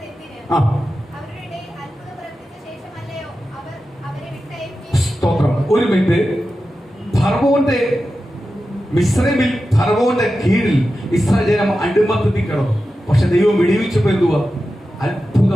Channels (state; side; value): normal; both; correlation 0.92